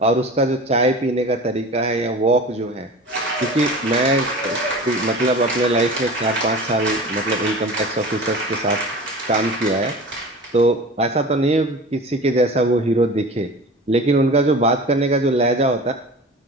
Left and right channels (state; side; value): normal; both; correlation 0.36